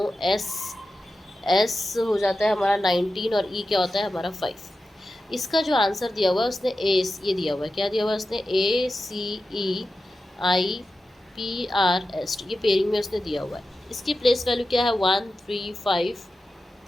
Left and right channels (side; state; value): both; normal; correlation 0.92